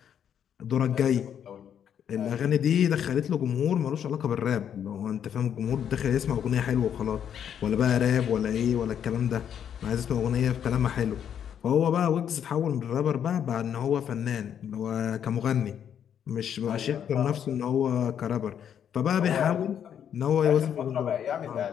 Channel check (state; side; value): quieter; right; 8.9 dB